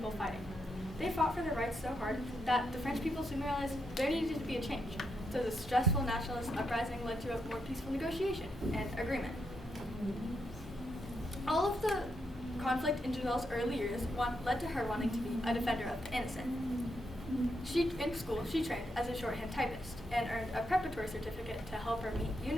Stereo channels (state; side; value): normal; both; correlation 0.81